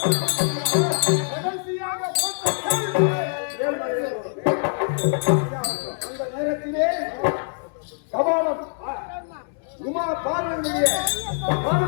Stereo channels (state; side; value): silent; right; digital silence